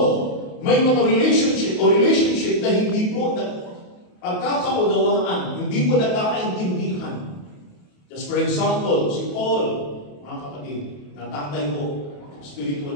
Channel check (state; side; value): late; right; 28 ms